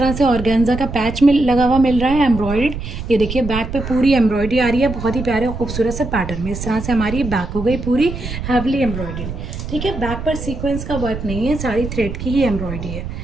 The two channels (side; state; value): right; noise; rumble, 7 dB below the sound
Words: से ऑर्गेन्जा का पैच में लगा हुआ मिल रहा है एम्ब्रॉयड। ये देखिए बैक पे पूरी एम्ब्रॉयडरी आ रही है, बहुत ही प्यारे और खूबसूरत से पैटर्न में। इस तरह से हमारी बैक हो गई पूरी हैवली एम्ब्रॉयडरी। ठीक है, बैक पर सीक्वेंस का वर्क नहीं है, सारी थ्रेड की ही एम्ब्रॉयडरी है।